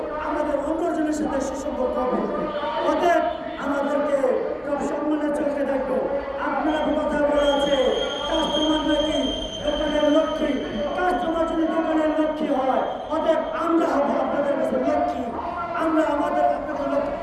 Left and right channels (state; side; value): identical; both; correlation 1.00